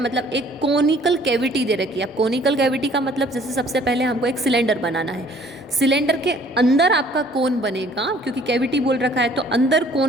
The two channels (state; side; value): normal; both; correlation 0.57